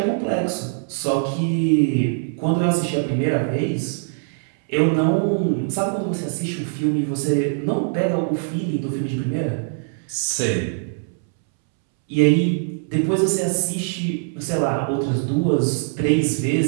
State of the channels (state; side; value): silent; left; 64 dB below the other